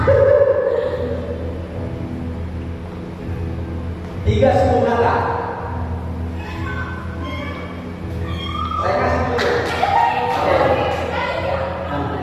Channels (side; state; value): both; identical; correlation 1.00